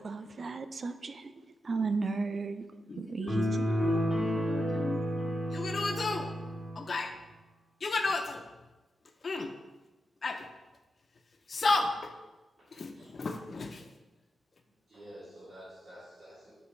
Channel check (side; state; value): both; normal; correlation 0.87